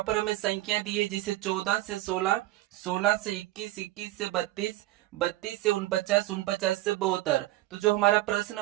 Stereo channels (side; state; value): left; quieter; 16.7 dB